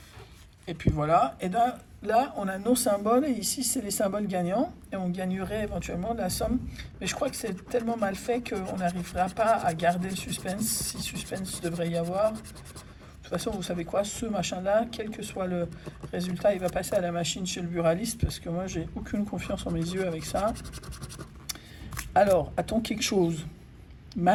Et puis voilà. Et là, on a nos symboles et ici, c'est les symboles gagnants. Et on gagnerait éventuellement de la somme. Mais je crois que c'est tellement mal fait qu'on n'arrivera pas à garder le suspense, si suspense devrait y avoir. De toute façon, vous savez quoi, ce machin-là, quel que soit le résultat, il va passer à la machine chez le buraliste parce que moi, j'ai aucune confiance en mes yeux avec ça. Alors, a-t-on quelque chose?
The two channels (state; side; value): identical; both; correlation 1.00